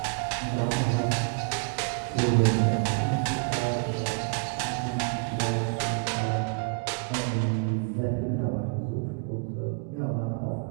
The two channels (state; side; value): quieter; left; 34.7 dB